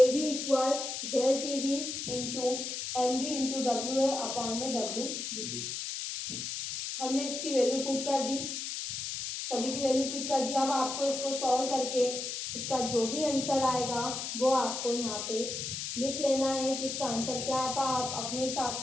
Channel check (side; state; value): left; noise; hiss, 4 dB below the sound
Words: B equal del T B into M B into W A upon में डब्ल्यू डी। हमने इसकी वैल्यू पुट कर दी, सभी की वैल्यू पुट कर दी। अब आपको इसको सॉल्व करके इसका जो भी आंसर आएगा वो आपको यहाँ पे लिख लेना है कि इसका आंसर क्या आता। आप अपने